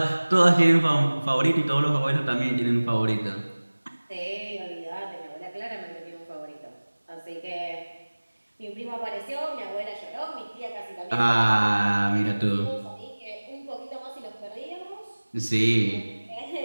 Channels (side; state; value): both; inverted; correlation -1.00